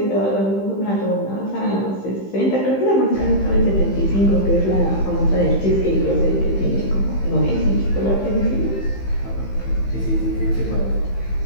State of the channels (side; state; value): right; late; 15 ms